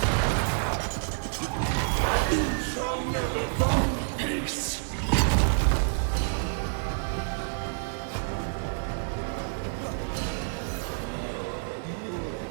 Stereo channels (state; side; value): silent; left; digital silence